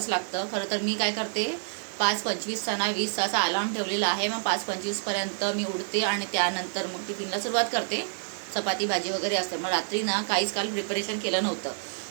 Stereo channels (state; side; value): silent; left; digital silence